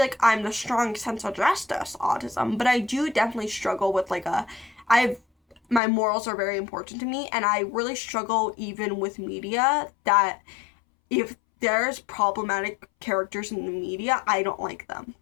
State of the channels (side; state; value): right; drops out; at 5.8 s